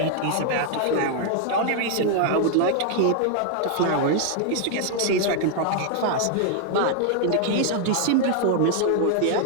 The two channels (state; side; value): different; both; correlation 0.00